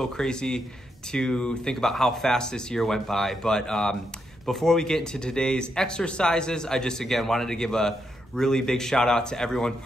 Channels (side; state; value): both; normal; correlation 0.81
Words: crazy to think about how fast this year went by. But before we get into today's exercises, I just again wanted to give a really big shout out to everyone